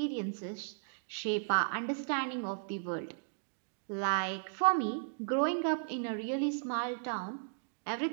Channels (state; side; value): silent; left; digital silence